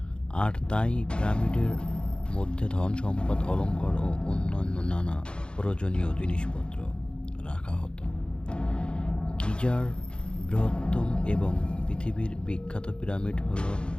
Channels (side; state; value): right; late; 0.053 ms